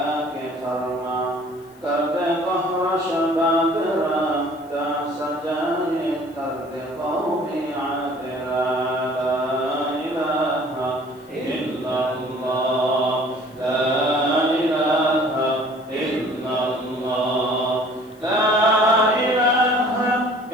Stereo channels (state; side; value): noise; left; hiss, 29 dB below the sound